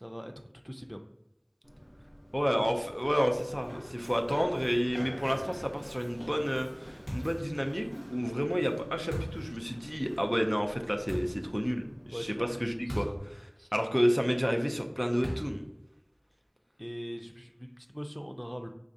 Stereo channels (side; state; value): both; identical; correlation 1.00